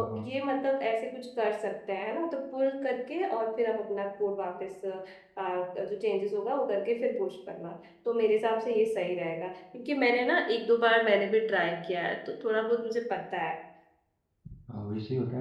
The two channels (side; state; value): both; identical; correlation 1.00